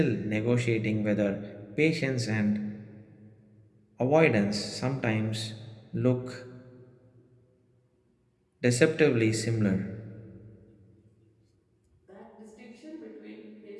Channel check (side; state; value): both; identical; correlation 1.00